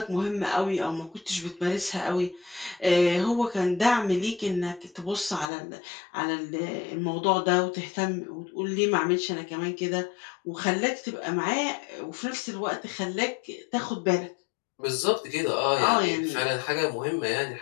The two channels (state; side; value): drops out; right; at 5.5 s